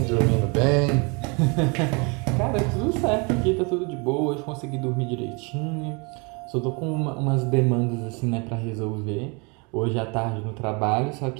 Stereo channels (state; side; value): quieter; left; 31.1 dB